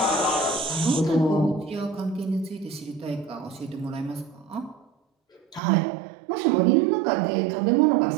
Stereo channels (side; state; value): left; drops out; at 5.6 s